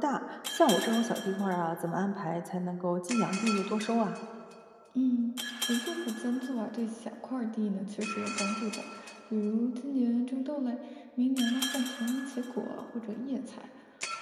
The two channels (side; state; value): both; identical; correlation 1.00